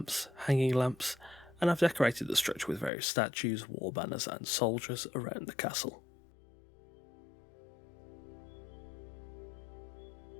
hanging lamps, and I've decorated the structure with various statues, war banners and soldiers around the castle.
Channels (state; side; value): drops out; right; at 2.9 s